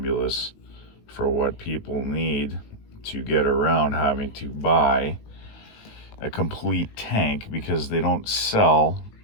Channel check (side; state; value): right; late; 19 ms